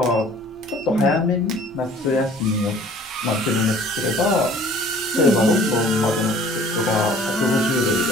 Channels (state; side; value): normal; both; correlation 0.51